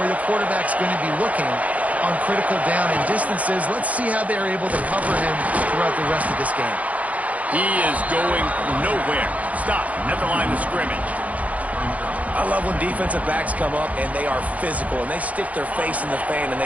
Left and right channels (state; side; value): late; left; 0.070 ms